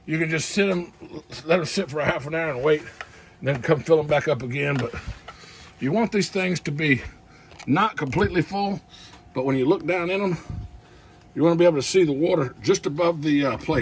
you can just let them sit for a half an hour and wait, and then come fill them back up again. But you want these things to be not completely full, but when you look down in them, you want to be able to see the water just above the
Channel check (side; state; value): both; identical; correlation 1.00